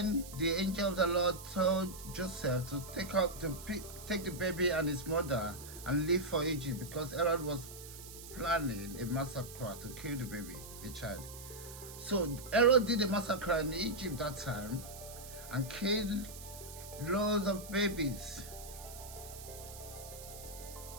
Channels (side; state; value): right; noise; hiss, 14 dB below the sound